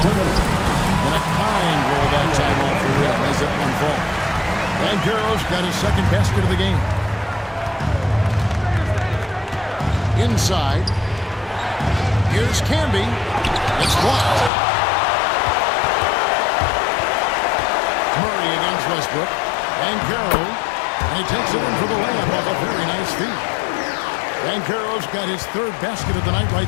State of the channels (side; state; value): right; drops out; at 14.5 s